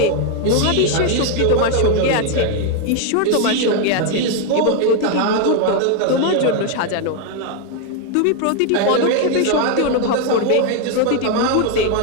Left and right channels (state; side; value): different; both; correlation 0.01